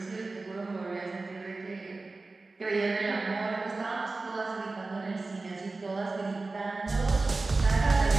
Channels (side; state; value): left; quieter; 3.5 dB